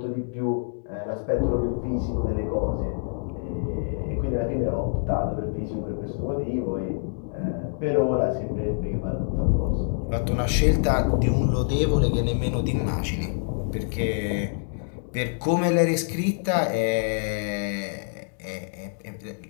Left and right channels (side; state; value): right; silent; digital silence